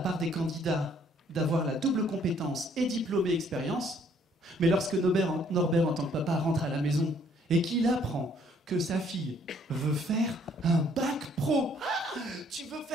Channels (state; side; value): normal; both; correlation 0.63